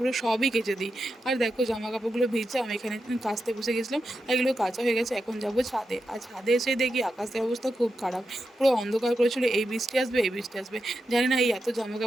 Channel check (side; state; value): both; normal; correlation 0.88